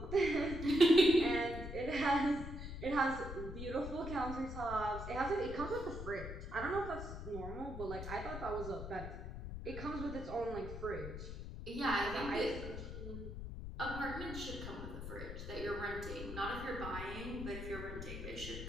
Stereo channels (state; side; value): noise; left; rumble, 8 dB below the sound